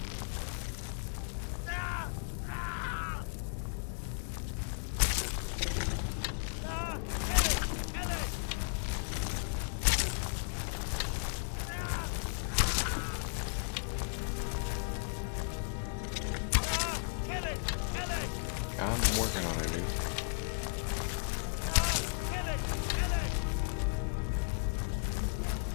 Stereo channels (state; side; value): silent; right; digital silence